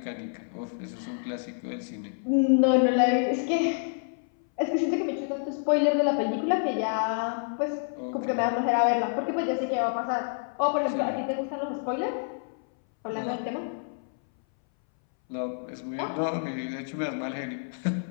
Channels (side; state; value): right; silent; 59 dB below the other